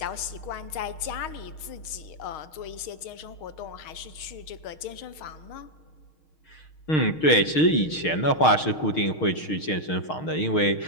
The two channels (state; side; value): late; right; 6.4 ms